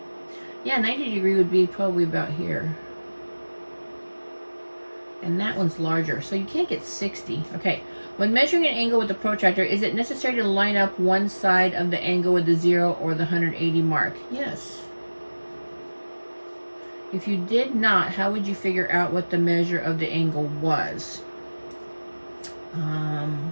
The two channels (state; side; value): inverted; both; correlation -1.00